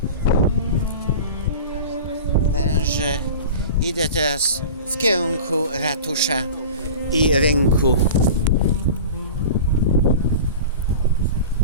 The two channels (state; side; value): inverted; both; correlation -0.35